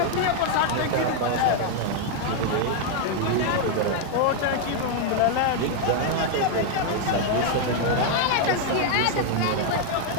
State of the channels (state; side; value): different; both; correlation 0.00